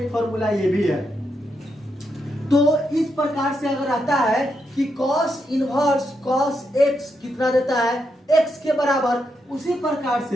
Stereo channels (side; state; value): both; normal; correlation 0.82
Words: फॉर्मूला ये भी है। तो इस प्रकार से अगर आता है कि cos इनवर्स cos x कितना देता है, x के बराबर, उसी प्रकार